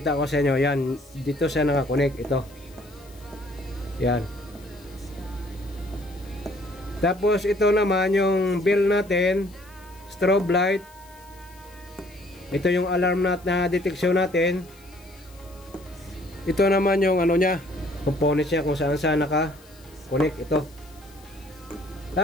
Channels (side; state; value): left; noise; hiss, 26 dB below the sound